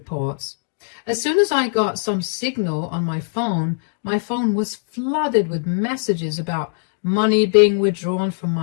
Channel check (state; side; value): silent; right; digital silence